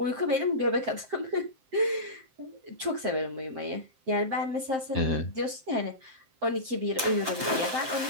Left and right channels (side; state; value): left; late; 7.6 ms